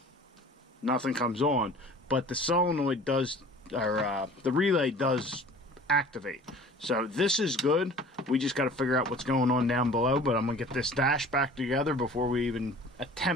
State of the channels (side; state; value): both; normal; correlation 0.45